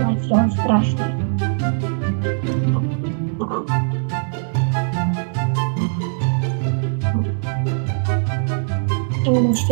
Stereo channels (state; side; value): silent; left; digital silence